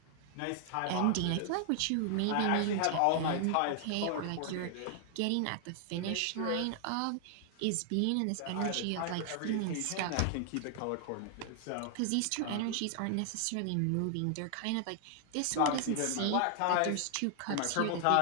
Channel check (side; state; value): both; different; correlation 0.00